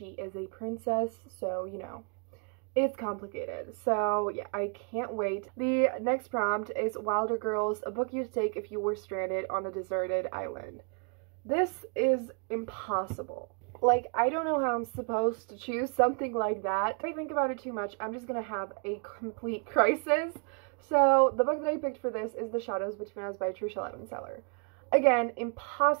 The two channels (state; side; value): quieter; left; 38.3 dB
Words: is a princess, so you know, it's complicated. So yeah, I can't wait. The next prompt is Wilder Girls, a book you'd take if you were stranded on a deserted island. This is impossible. Like, I don't know how I'm supposed to choose something like that. If I think about it too much, I'm just gonna have a complete crisis. So the book that I picked for this is The Shadows Between Us by Tricia Levenseller. Again,